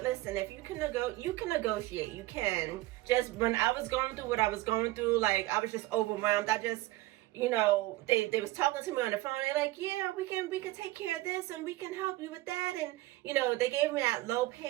if you can negotiate. You can. Just when I was going through what I was going through, like I was just overwhelmed. I just, they was talking to me on the phone. They're like, yeah, we can take care of this and we can help you with that. And, they gave me that low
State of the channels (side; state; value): left; quieter; 18.2 dB